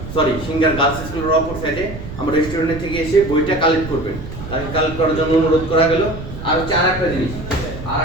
সিঙ্গার গার্লস স্কুলের অপর সাইডে আমার রেস্টুরেন্ট থেকে এসে বইটা কালেক্ট করবেন। তাকে কালেক্ট করার জন্য অনুরোধ করা গেল। আর হচ্ছে আর একটা জিনিস, আর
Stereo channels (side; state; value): right; noise; rumble, 10 dB below the sound